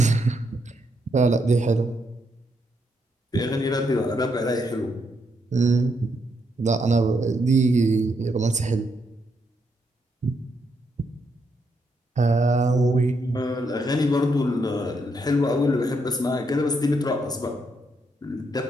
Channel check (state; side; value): normal; both; correlation 0.78